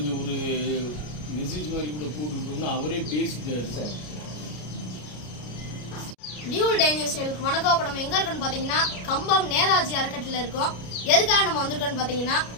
ஒரு மெசேஜ் மாதிரி கூட போட்டுவிட்டோம்னா அவரே பேசிட்டார். சார் டியூல் டேஞ்சர் சேலுக்கு வணக்கம். இப்போ நம்ம எங்கே இருக்கோன்னு பார்த்தீங்கன்னா கம்பம் நேதாஜி அறக்கட்டளையில் இருக்கோம். எதுக்காக நம்ம வந்திருக்கோன்னு பார்த்தீங்கன்னா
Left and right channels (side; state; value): right; late; 33 ms